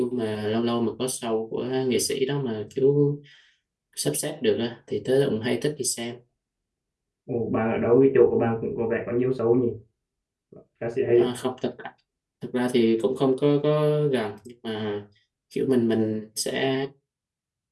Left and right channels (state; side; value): identical; both; correlation 1.00